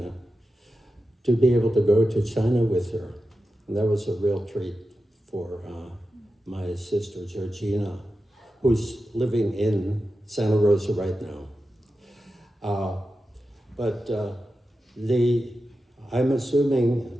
to be able to go to China with her. And that was a real treat for my sister, Georgina, who's living in Santa Rosa right now. I'm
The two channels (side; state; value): both; normal; correlation 0.91